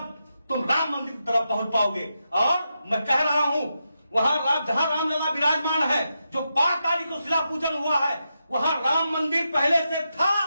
तुम राम मंदिर की तरफ पहुंच पाओगे। और मैं कह रहा हूं, वहां जहां रामलला विराजमान है, जो 5 तारीख को शिला पूजन हुआ है, वहां राम मंदिर पहले से था,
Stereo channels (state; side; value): inverted; both; correlation -0.86